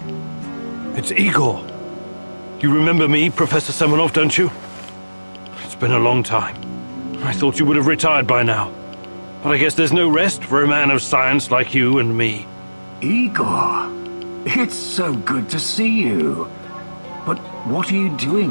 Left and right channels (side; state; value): both; inverted; correlation -1.00